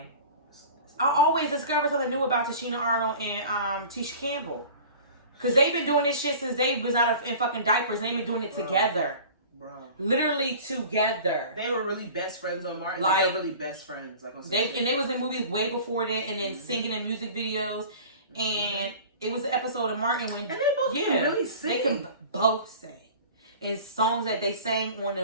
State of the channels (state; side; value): inverted; both; correlation -0.41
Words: I always discover something new about Tashina Arnold and Tisha Campbell. Because they've been doing this shit since they was in fucking diapers. They've been doing it together. Bro. Literally together. They were really best friends on Martin. Like, they were really best friends. Like on they was in movies way before that, and then singing in music videos. And it was an episode of Martin when... And they both can really sing. They can both sing. And songs that they sang on the